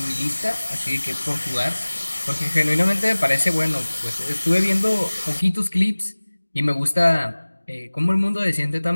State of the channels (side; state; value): both; inverted; correlation -1.00